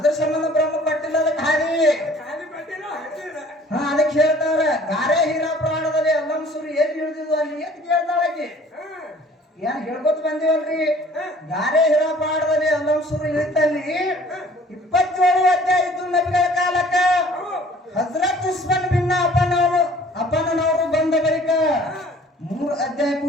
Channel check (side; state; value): both; normal; correlation 0.52